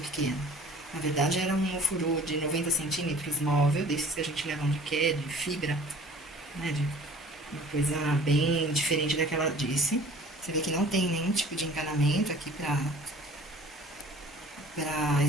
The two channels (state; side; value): normal; both; correlation 0.48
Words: pequeno. Na verdade, era um ofurô de 90 centímetros móvel, desses que a gente leva onde quer, de fibra, né? De uma coisa bem diferente daquela disse. Você vê que não tem nenhum tipo de encanamento aqui para